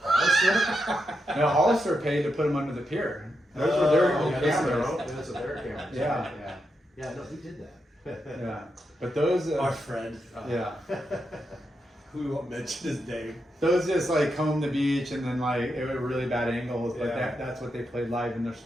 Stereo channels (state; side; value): normal; both; correlation 0.84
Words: No, Hollister paid to put them under the pier. Those were their own cameras. Those are their cameras. Yeah. No, he did that. Yeah, but those. Our friend, Yeah, who won't mention his name. those just like comb the beach and then like it were really bad angles. But Yeah. that's what they played live in their